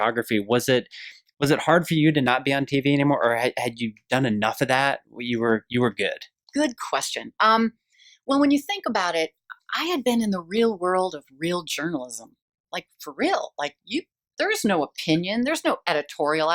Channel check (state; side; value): identical; both; correlation 1.00